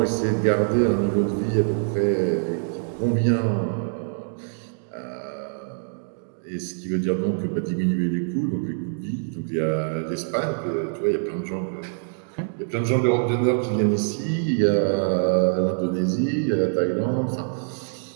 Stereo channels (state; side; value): silent; left; digital silence